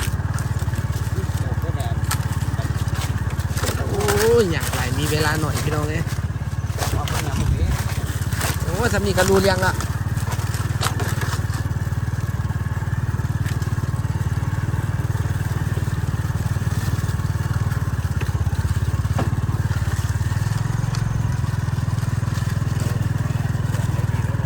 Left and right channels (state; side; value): identical; both; correlation 1.00